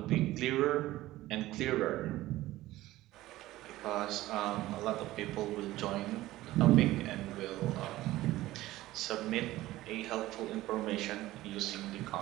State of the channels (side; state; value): left; quieter; 16.5 dB